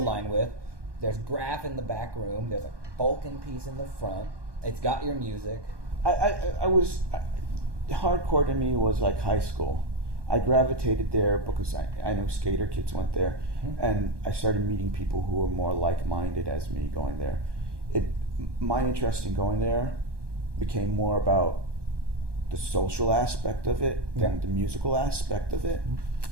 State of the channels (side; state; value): left; late; 1.2 ms